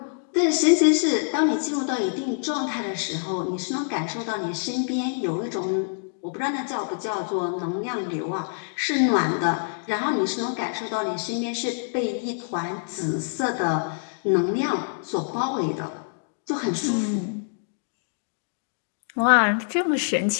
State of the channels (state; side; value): silent; right; digital silence